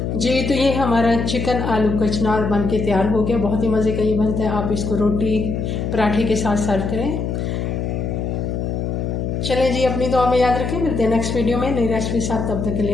जी, तो ये हमारा चिकन आलू कचनार बन के तैयार हो गया। बहुत ही मज़े का ये बनता है। आप इसको रोटी पराठे के साथ सर्व करें। चलें जी, अपनी दुआ में याद रखें। मिलते हैं नेक्स्ट वीडियो में नई रेसिपी साथ। तब तक के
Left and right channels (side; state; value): left; noise; hum, 2 dB below the sound